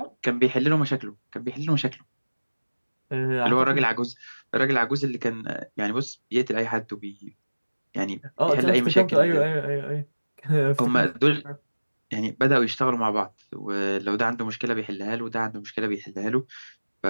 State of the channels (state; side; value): inverted; both; correlation -1.00